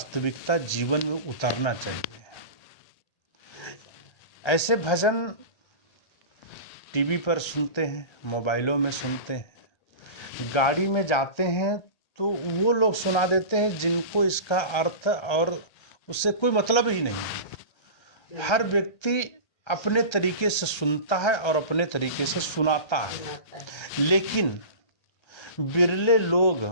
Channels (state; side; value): late; right; 1.3 ms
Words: जीवन में उतरना चाहिए। ऐसे भजन टीवी पर सुनते हैं, मोबाइलों में सुनते हैं, गाड़ी में जाते हैं तो वो लोग सुना देते हैं जिनको इसका अर्थ और उससे कोई मतलब ही नहीं है। हर व्यक्ति अपने तरीके से सुनता है और अपने तरीके से सुनाता है, लेकिन बिरले लोग